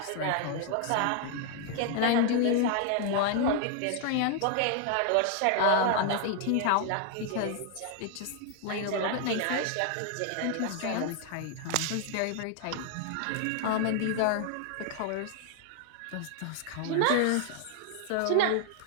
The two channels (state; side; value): different; both; correlation 0.00